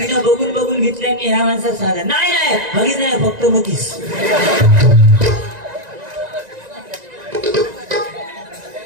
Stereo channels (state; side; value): late; left; 1.9 ms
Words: बघून बघून घेतल्या. मी ह्या माणसाला सांगा, नाही नाही हगीच नाही, फक्त मतीस.